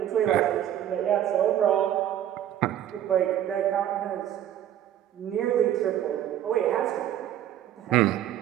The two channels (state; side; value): quieter; left; 11.3 dB